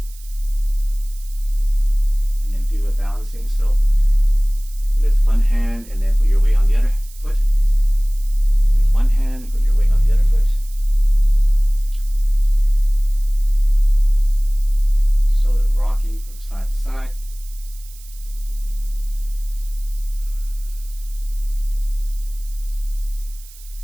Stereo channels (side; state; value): right; noise; hiss, 22 dB below the sound